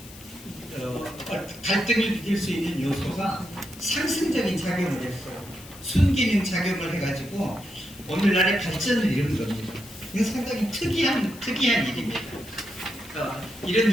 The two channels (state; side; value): noise; left; hiss, 18 dB below the sound